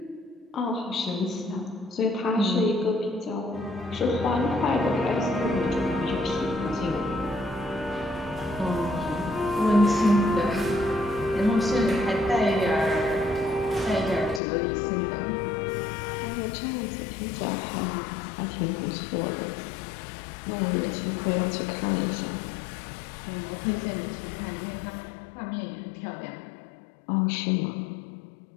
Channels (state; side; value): drops out; right; at 14.4 s